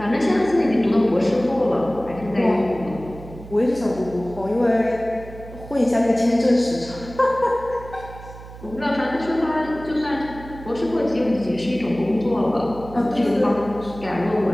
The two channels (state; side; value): noise; right; hum, 15 dB below the sound